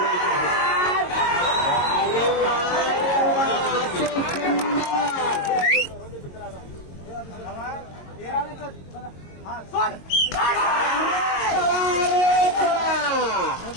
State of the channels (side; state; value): right; late; 22 ms